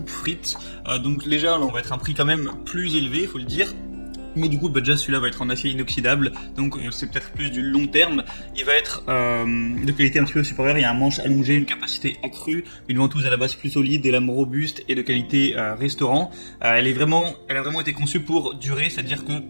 Frites. Donc déjà, là, on va être un prix quand même plus élevé, faut le dire. Mais du coup, déjà celui-là va être en acier inoxydable, donc c'est peut-être plus du long terme. Il va être de qualité un petit peu supérieure, il y a un manche allongé, une capacité accrue, une ventouse à la base plus solide, des lames robustes et de qualité restaurant. Elle a vraiment été conçue pour durer, c'est-à-dire que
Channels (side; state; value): both; inverted; correlation -1.00